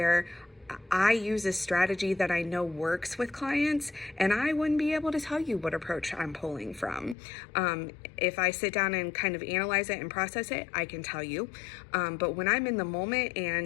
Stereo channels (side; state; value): right; drops out; at 7.2 s